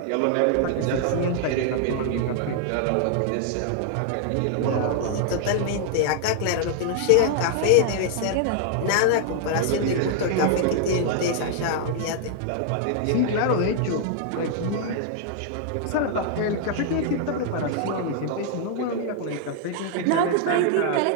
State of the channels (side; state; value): both; different; correlation -0.01